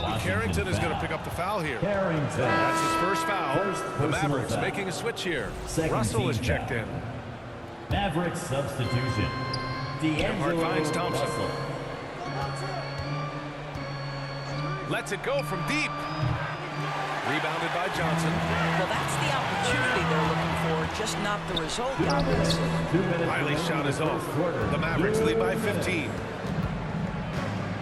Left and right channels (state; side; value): identical; both; correlation 1.00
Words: Carrington is going to pick up the foul here. Carrington. That's his first foul. The Mavericks foul. making a switch here. Second Russell is team checked foul. in. Mavericks substitution. Nembhard finds D'Angelo Thompson. Russell. Lets it go from deep. Rebounded by Johnson. Well, that's the opportunity they're looking for, just not the result, obviously. 2 minutes Riley's shot is off. quarter. The Mavericks lead by 15.